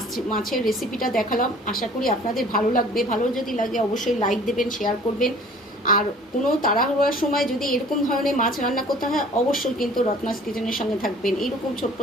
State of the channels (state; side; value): normal; both; correlation 0.50